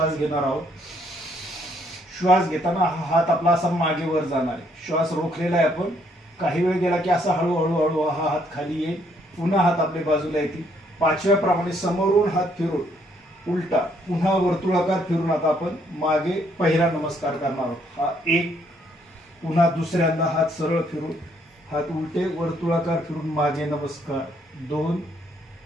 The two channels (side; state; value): both; normal; correlation 0.69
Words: घेणार आहोत। श्वास घेताना हा हात आपला असा मागे वर जाणार आहे। श्वास रोखलेला आहे आपण। काही वेळ गेला की असा हळूहळू हळू हा हात खाली येईल, पुन्हा हात आपल्या बाजूला येतील। 5व्या प्रमाणे समोरून हात फिरून उलटा पुन्हा वर्तुळाकार फिरून आता आपण मागे पहिला नमस्कार करणार आहोत। हा 1, पुन्हा दुसऱ्यांदा हात सरळ फिरून हात उलटे वर्तुळाकार फिरून मागे नमस्कार 2,